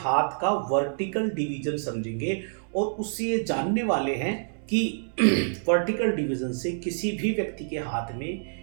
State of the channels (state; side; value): silent; left; digital silence